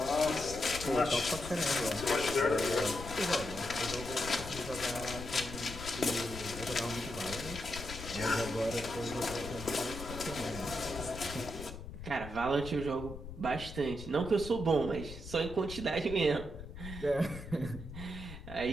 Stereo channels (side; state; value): left; noise; rumble, 11 dB below the sound